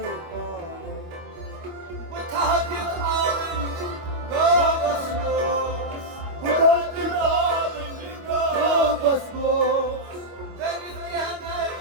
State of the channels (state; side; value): late; left; 25 ms